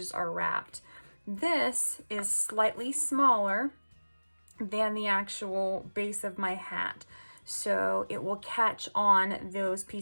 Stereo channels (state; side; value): inverted; both; correlation -1.00